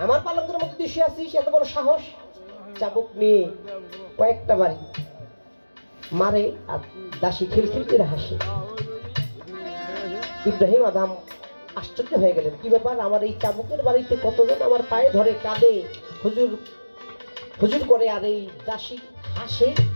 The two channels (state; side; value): inverted; both; correlation -1.00